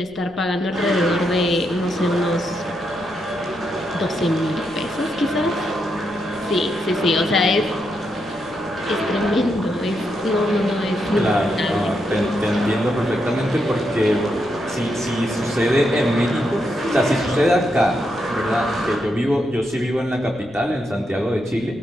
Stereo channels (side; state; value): left; noise; rumble, 24 dB below the sound